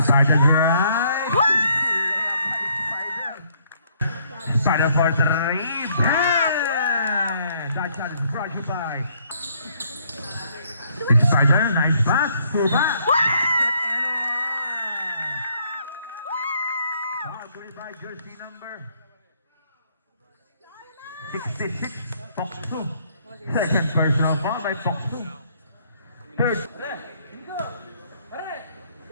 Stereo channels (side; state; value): both; inverted; correlation -0.67